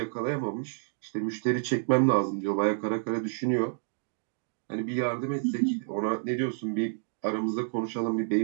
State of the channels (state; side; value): silent; left; digital silence